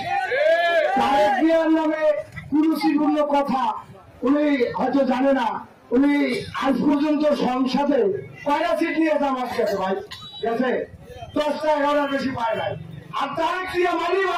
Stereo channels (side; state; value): both; identical; correlation 1.00